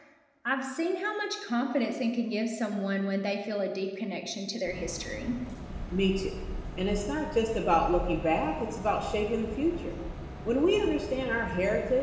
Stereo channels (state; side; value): identical; both; correlation 1.00